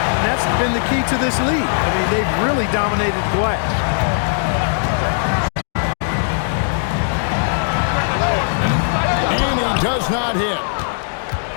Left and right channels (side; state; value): right; silent; digital silence